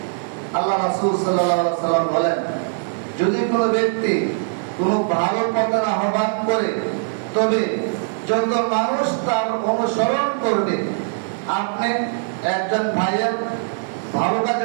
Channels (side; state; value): left; silent; 65 dB below the other